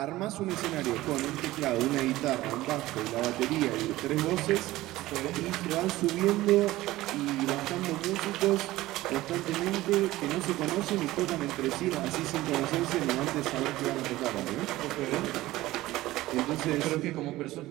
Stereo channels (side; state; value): left; quieter; 17.2 dB